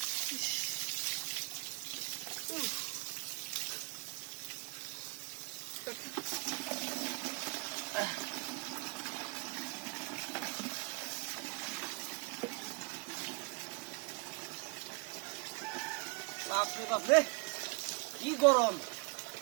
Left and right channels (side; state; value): left; quieter; 29.7 dB